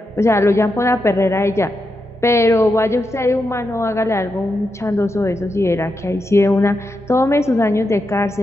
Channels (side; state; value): both; normal; correlation 0.86